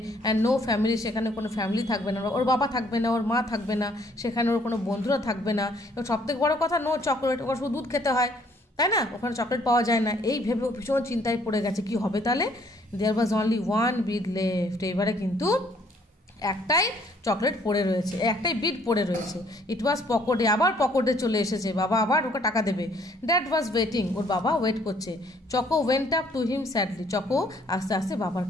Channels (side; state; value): both; normal; correlation 0.63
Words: অ্যান্ড নো ফ্যামিলি, সেখানে কোনো ফ্যামিলি থাকবে না, ওর বাবা থাকবে না, ওর মা থাকবে না, সেখানে ওর কোনো বন্ধুরা থাকবে না। এবং সবথেকে বড় কথা, নো চকলেট, ওর শুধু দুধ খেতে হয়, তাই না, ওখানে চকলেট পাওয়া যায় না। এই ভেবে ভীষণ চিন্তায় পড়ে গেছে কি হবে তাহলে। There was only one bead left. এবারে কিন্তু একটাই চকলেট পড়ে রয়েছে, একটাই বিট পড়ে রয়েছে। ইট ওয়াজ পকেটে, আবার পকেটে চলে এসেছে। বাবা আবার ওকে টাকা দেবে। ড্যাড ওয়াজ ওয়েটিং, ওর বাবা ওয়েট করছে। Choco went up to him sadly, choco আস্তে আস্তে বাবার